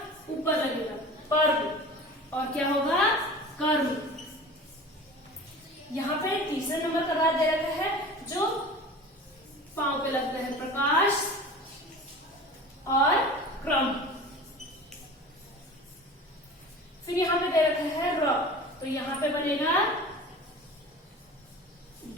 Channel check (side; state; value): both; normal; correlation 0.38